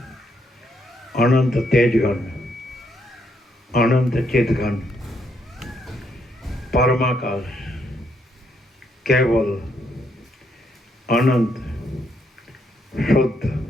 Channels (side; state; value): both; normal; correlation 0.75